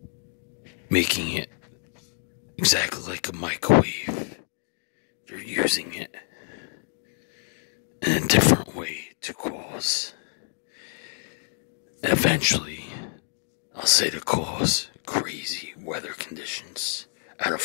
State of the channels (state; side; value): silent; right; digital silence